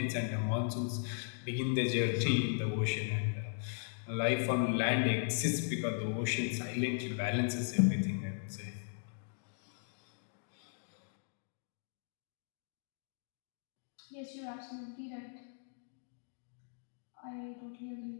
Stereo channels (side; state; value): right; silent; digital silence